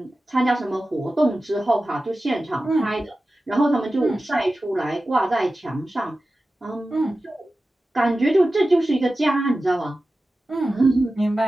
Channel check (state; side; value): normal; both; correlation 0.95